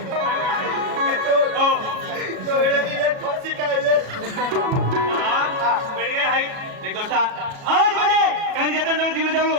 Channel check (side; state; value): left; late; 37 ms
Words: तो एवढा दिले फाशी खायले बेड काय हाय एक दोस्ता आज म्हणजे कान जतन जण दिले जाऊ